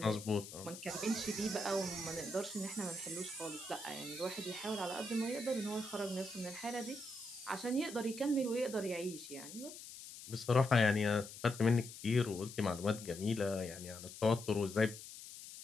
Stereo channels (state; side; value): noise; left; hiss, 13 dB below the sound